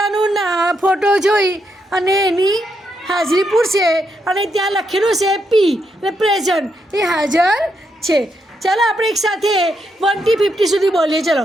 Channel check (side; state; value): both; normal; correlation 0.80